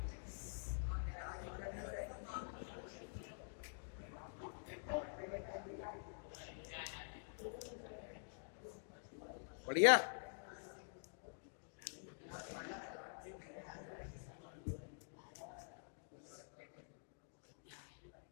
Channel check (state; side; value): silent; right; digital silence